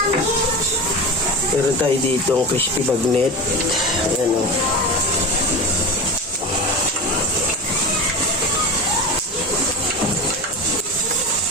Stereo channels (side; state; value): both; normal; correlation 0.26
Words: Meron tayo ditong crispy bagnet. Ayan, o.